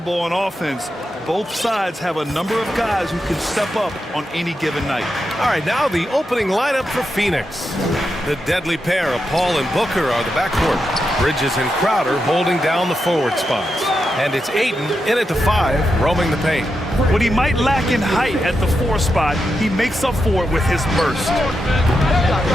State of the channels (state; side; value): normal; both; correlation 0.86